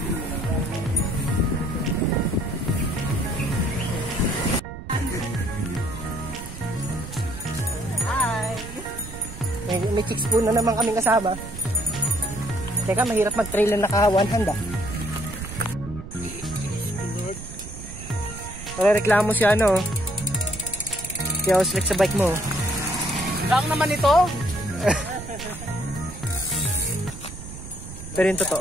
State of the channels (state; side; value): noise; right; rumble, 12 dB below the sound